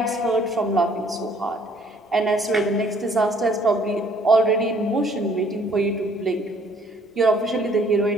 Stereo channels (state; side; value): normal; both; correlation 0.60